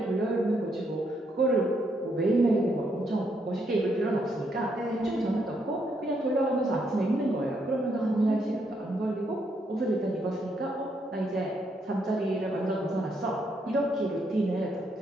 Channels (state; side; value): normal; both; correlation 0.76